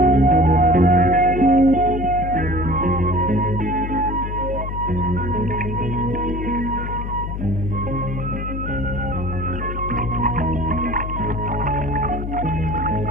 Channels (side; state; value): left; noise; hum, 5 dB below the sound